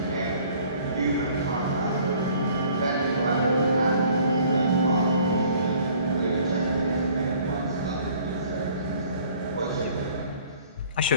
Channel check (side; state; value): both; inverted; correlation -0.56